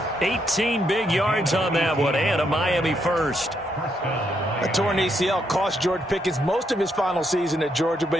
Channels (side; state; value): both; normal; correlation 0.77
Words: 18 big yards on that one, and a Miami first. A torn ACL cost George Pickens most of his final season at Georgia,